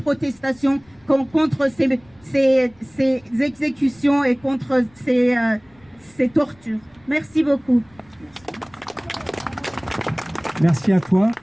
contre ces exécutions et contre ces tortures. Merci beaucoup. Merci à toi,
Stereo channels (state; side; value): noise; left; rumble, 30 dB below the sound